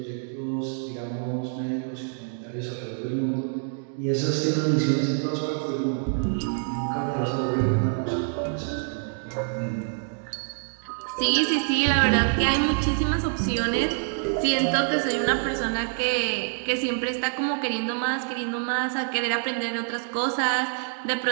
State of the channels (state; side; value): silent; left; 61 dB below the other